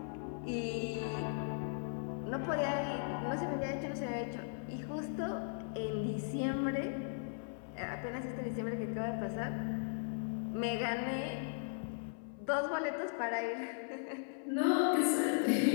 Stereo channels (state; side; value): silent; right; 53 dB below the other